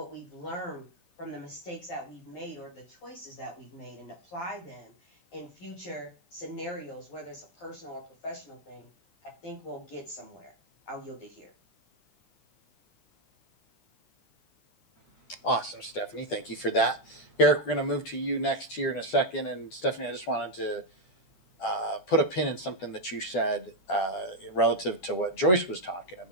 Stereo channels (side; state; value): right; late; 11 ms